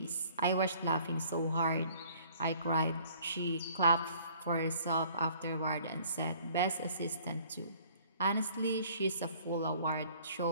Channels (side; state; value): both; inverted; correlation -0.55